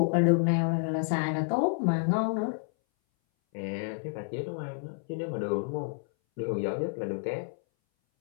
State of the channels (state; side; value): silent; right; 58 dB below the other